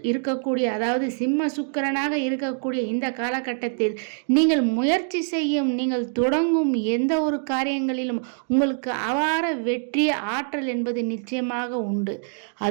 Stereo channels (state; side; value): silent; left; 62 dB below the other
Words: இருக்கக்கூடிய, அதாவது சிம்ம சுக்கிரனாக இருக்கக்கூடிய இந்த காலகட்டத்தில் நீங்கள் முயற்சி செய்யும், நீங்கள் தொடங்கும் எந்த ஒரு காரியங்களிலும் உங்களுக்கு அபார வெற்றி ஆற்றல் என்பது நிச்சயமாக உண்டு.